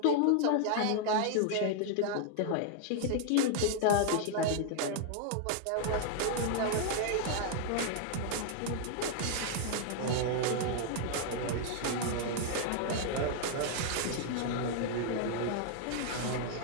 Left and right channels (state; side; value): different; both; correlation -0.01